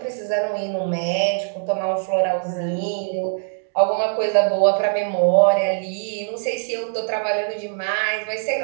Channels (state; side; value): silent; left; digital silence